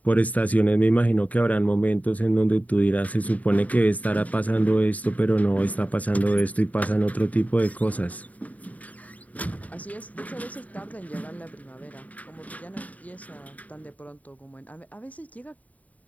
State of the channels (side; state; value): right; late; 0.072 ms